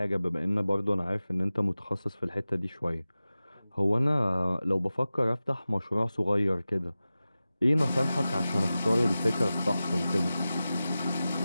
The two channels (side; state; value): both; inverted; correlation -0.95